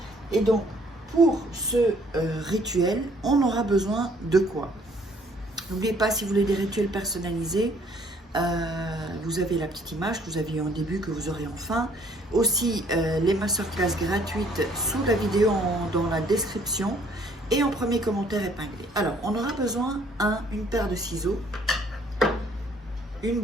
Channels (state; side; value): normal; both; correlation 0.61